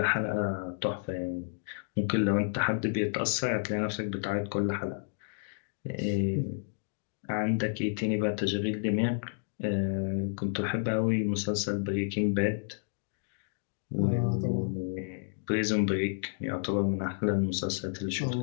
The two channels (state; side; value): silent; right; digital silence